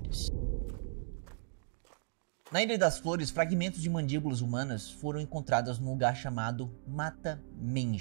Na Ilha das Flores, fragmentos de mandíbulas humanas foram encontrados num lugar chamado Mata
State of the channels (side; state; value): left; silent; digital silence